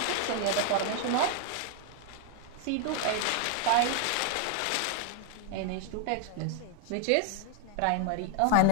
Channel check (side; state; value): both; different; correlation 0.00